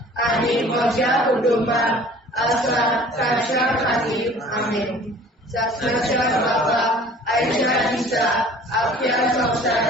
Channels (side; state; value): both; normal; correlation 0.49